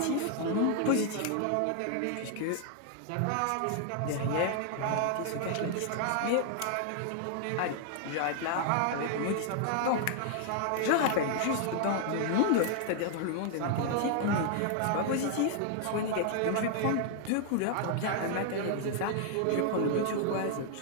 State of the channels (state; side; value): different; both; correlation 0.00